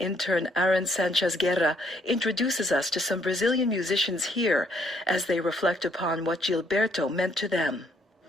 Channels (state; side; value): normal; both; correlation 0.69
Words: AARON SÁNCHEZ-GUERRA introduces us to some Brazilian musicians here as they reflect upon what Gilberto meant to them.